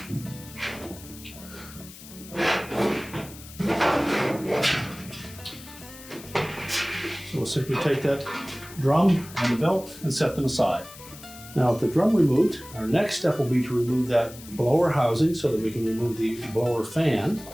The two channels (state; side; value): noise; left; hiss, 17 dB below the sound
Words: So we'll simply take that drum and the belt and set them aside. Now with the drum removed, our next step will be to remove that blower housing so that we can remove the blower fan.